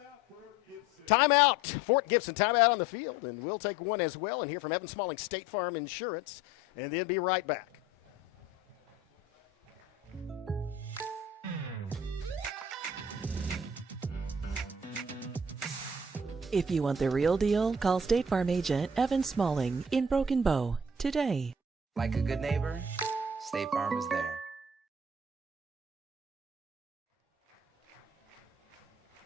Timeout, Fort Gibson, timeout on the field, and we'll take one as well and hear from Evan Smalling, State Farm Insurance, and then be right back. If you want the real deal, call State Farm agent Evan Smalling in Broken Bow today. Like a good neighbor, State Farm is there.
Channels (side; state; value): both; normal; correlation 0.48